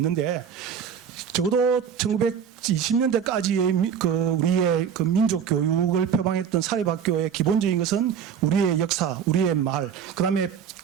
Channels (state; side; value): quieter; left; 7.7 dB